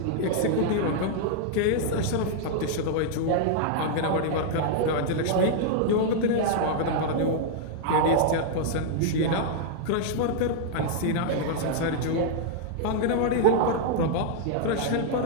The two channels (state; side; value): different; both; correlation -0.01